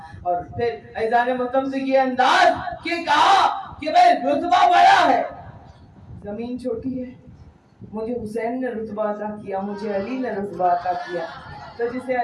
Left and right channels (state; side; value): identical; both; correlation 1.00